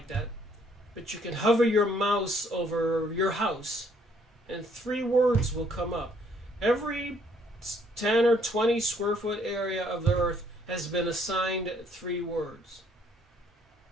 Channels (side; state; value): both; normal; correlation 0.66